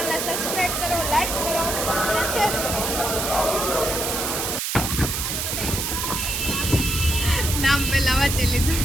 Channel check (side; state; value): right; noise; hiss, 1 dB below the sound